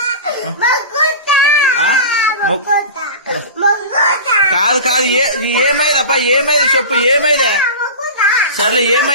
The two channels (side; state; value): both; inverted; correlation -0.30